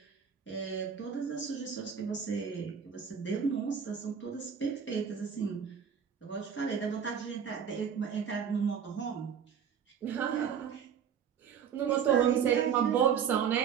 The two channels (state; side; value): quieter; left; 7.6 dB